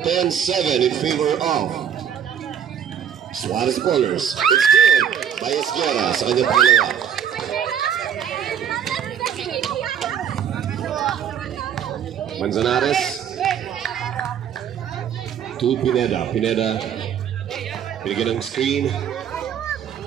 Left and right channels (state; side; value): quieter; left; 8.6 dB